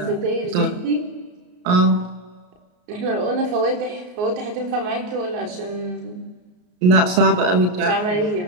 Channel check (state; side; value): late; left; 33 ms